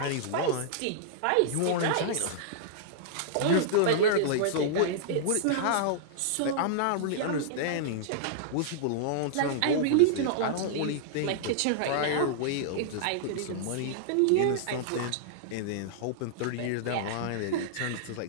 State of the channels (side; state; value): both; different; correlation -0.02